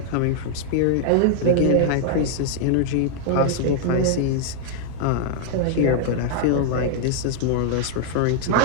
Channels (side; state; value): both; different; correlation 0.00